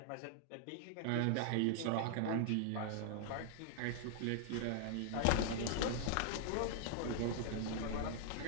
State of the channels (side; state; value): both; different; correlation -0.01